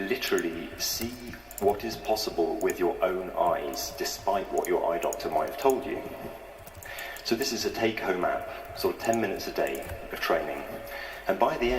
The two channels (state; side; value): identical; both; correlation 1.00